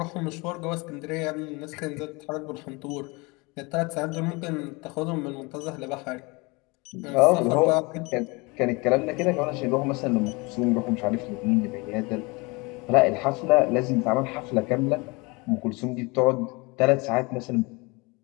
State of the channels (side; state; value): right; quieter; 26.6 dB